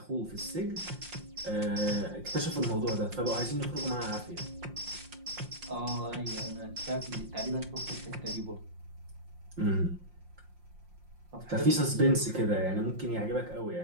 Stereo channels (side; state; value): left; late; 5.6 ms